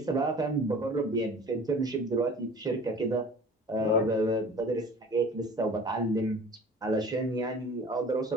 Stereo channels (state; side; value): normal; both; correlation 0.44